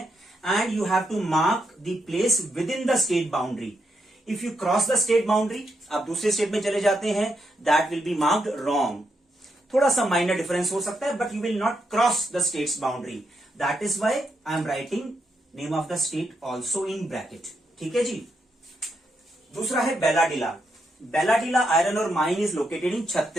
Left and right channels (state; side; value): normal; both; correlation 0.81